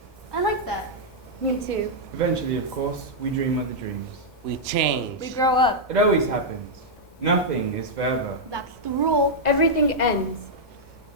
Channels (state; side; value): normal; both; correlation -0.06